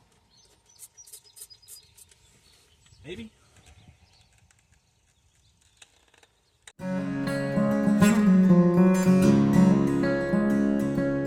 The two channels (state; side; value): identical; both; correlation 1.00